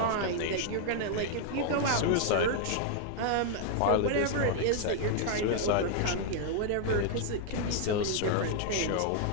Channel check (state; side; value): different; both; correlation 0.00